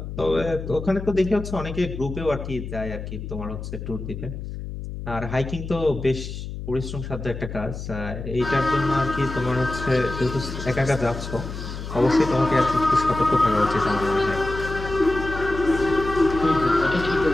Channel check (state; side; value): noise; left; hum, 8 dB below the sound